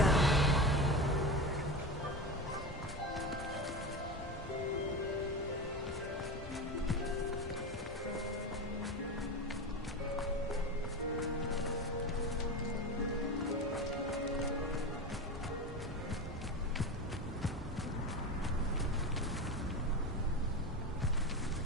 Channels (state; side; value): normal; both; correlation 0.24